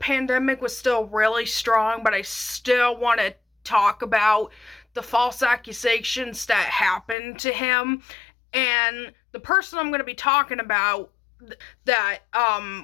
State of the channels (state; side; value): drops out; right; at 7.2 s